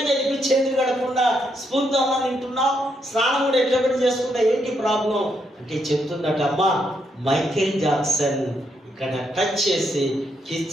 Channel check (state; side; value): normal; both; correlation 0.77